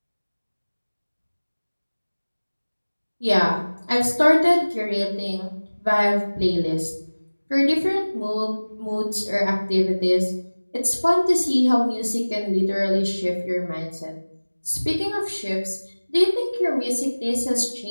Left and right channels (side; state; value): both; inverted; correlation -1.00